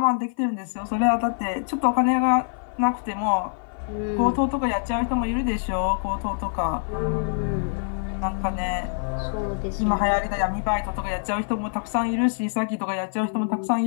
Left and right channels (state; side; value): silent; right; 55 dB below the other